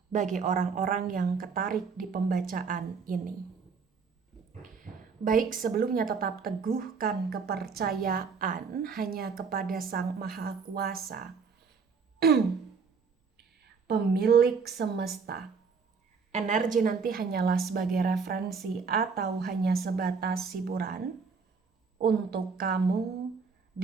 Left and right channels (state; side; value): quieter; left; 5.3 dB